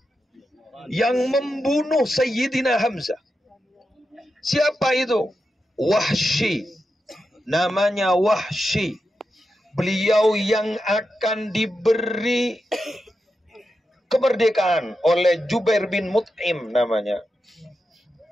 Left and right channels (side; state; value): both; normal; correlation 0.88